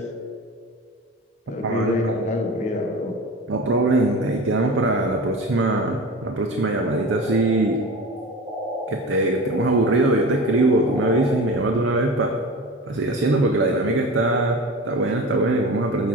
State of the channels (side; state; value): both; normal; correlation 0.32